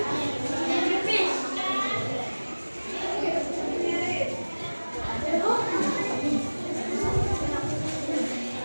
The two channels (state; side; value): inverted; both; correlation -1.00